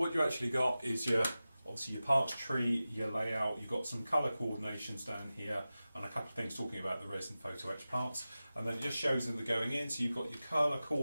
you actually got is obviously your parts tree, your layout, you've got some colour coordinations down here, and a couple of things talking about the resin photo etch parts. And then it just shows them they're going in, so you've got your colour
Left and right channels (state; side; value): inverted; both; correlation -0.95